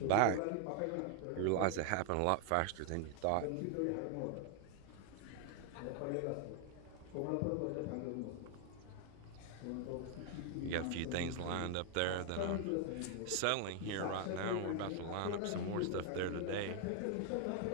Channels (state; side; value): different; both; correlation 0.00